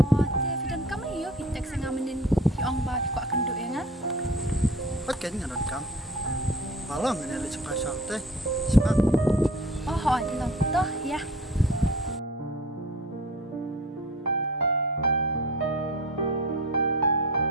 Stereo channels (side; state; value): both; normal; correlation 0.43